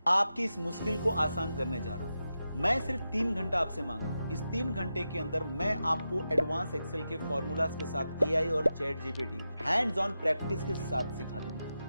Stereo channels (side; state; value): both; inverted; correlation -0.90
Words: आपकी इस मुश्किल को आसान करने जा रहा हूं। मैं सिर्फ 3 घंटा आपसे मांग रहा हूं। इस 3 घंटे के अंदर मैं आपको एडवांस एक्सेल के फॉर्मूलाज के साथ एआई और chat GPT hands on practice के साथ सिखा